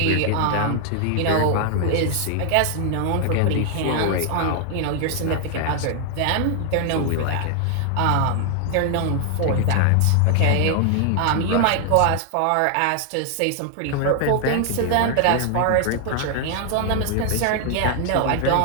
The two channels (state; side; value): different; both; correlation 0.00